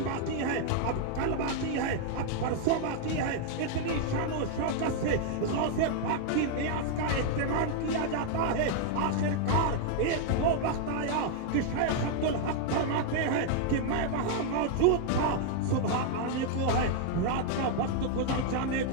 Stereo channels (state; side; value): different; both; correlation 0.00